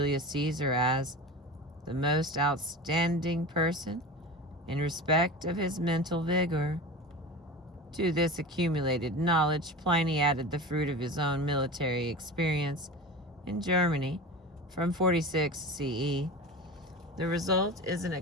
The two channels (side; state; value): both; normal; correlation 0.31